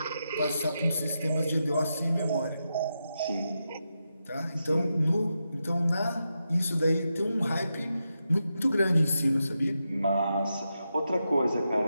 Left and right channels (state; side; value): inverted; both; correlation -0.87